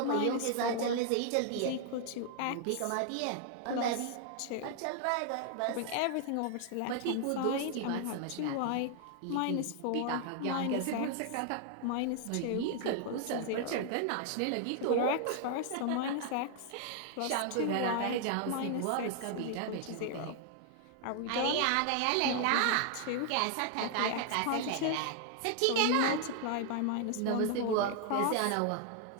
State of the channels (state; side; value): different; both; correlation 0.00